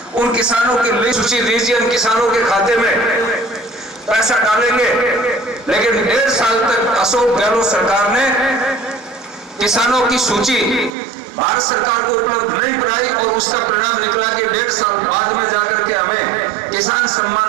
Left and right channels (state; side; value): drops out; left; at 10.9 s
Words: उन किसानों की लिस्ट सूची दीजिए, उन किसानों के खाते में पैसा डालेंगे। लेकिन 1.5 साल तक अशोक गहलोत सरकार ने किसानों की सूची भारत सरकार को उपलब्ध नहीं कराई और उसका परिणाम निकला कि 1.5 साल बाद में जाकर के हमें किसान